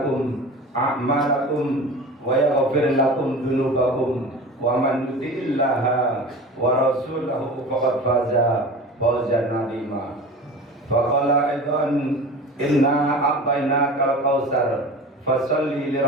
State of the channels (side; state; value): both; normal; correlation 0.35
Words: أعمالكم ويغفر لكم ذنوبكم ومن يطع الله ورسوله فقد فاز فوزا عظيما فقال أيضا إنا أعطيناك الكوثر فصل